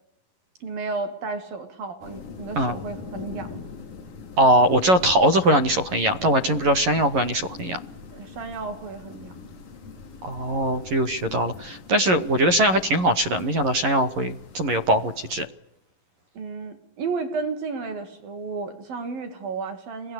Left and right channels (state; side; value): late; left; 11 ms